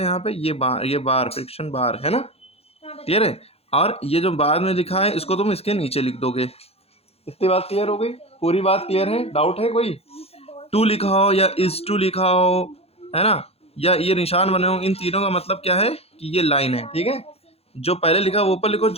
यहाँ पे ये बार फ्रिक्शन बार, है ना, क्लियर है। और ये जो बाद में लिखा है इसको तुम इसके नीचे लिख दोगे। इतनी बात क्लियर हो गई, पूरी बात क्लियर है, डाउट है कोई? 2 लिखा हो या इज 2 लिखा हो, है ना, या ये निशान बने हो, इन तीनों का मतलब क्या है कि ये लाइन है, ठीक है। जो पहले लिखा वो ऊपर लिखो,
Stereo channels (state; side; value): late; right; 0.29 ms